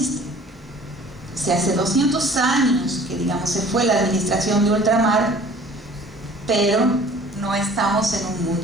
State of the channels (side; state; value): both; normal; correlation 0.49